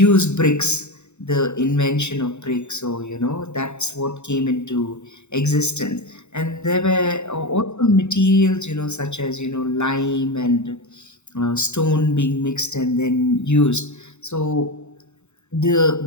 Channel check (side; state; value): right; late; 0.82 ms